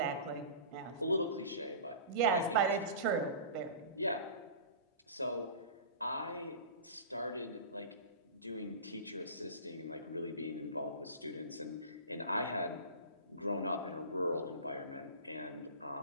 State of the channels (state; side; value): inverted; both; correlation -0.36